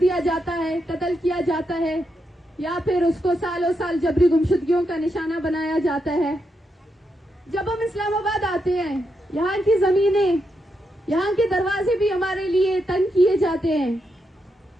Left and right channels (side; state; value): both; normal; correlation 0.83